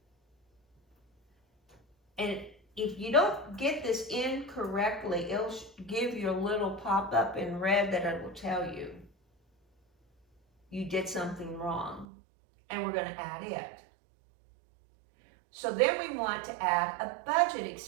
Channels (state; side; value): drops out; left; at 12.1 s